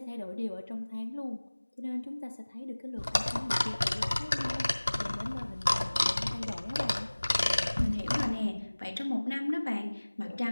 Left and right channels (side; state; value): both; inverted; correlation -1.00